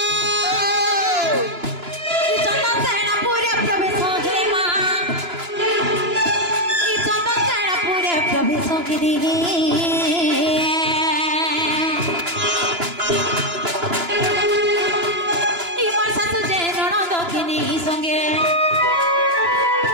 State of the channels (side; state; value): left; late; 2.9 ms